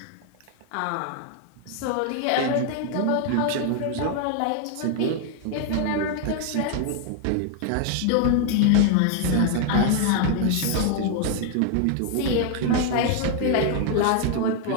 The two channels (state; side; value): different; both; correlation 0.00